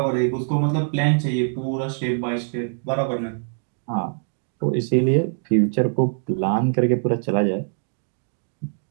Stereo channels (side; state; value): left; silent; digital silence